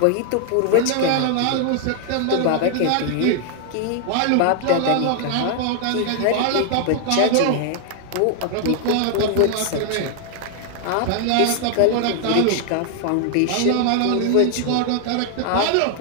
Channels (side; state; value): both; different; correlation 0.00